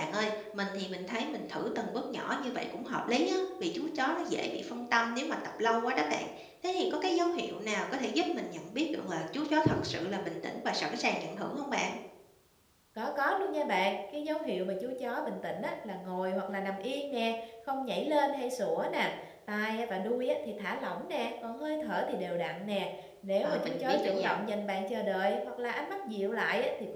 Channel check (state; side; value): identical; both; correlation 1.00